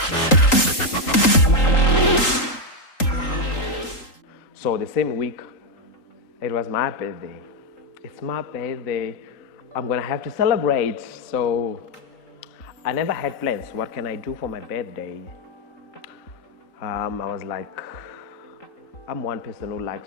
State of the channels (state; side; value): late; right; 3.8 ms